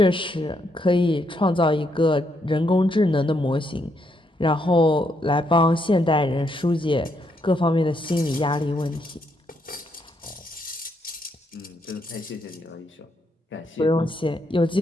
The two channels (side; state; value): both; normal; correlation 0.76